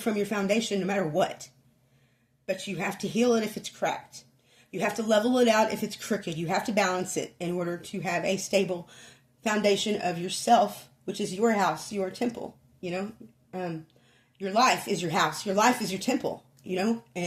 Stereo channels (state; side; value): identical; both; correlation 1.00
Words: your foundation no matter what. But you have to heal it if it's cracked. You have to level it out if it's crooked. You have to balance it in order to have a stable foundation of yourself, which is your house, your temple. Your life is your house. Your life is your temple.